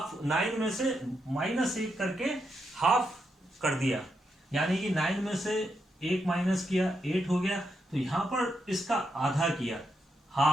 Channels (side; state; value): both; normal; correlation 0.82